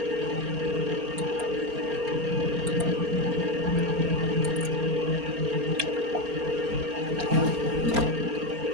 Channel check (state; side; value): late; left; 4.3 ms